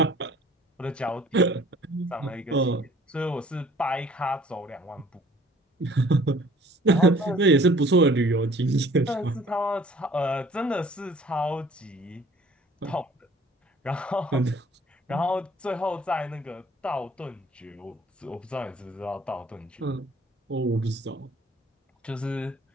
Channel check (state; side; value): normal; both; correlation 0.54